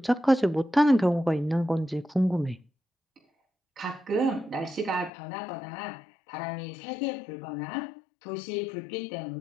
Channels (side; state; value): right; drops out; at 5.1 s